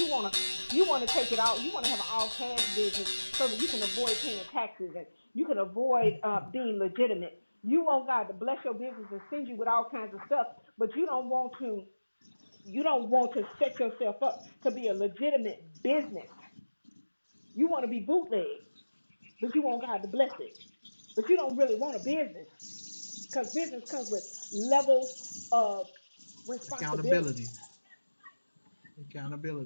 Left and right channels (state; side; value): inverted; both; correlation -1.00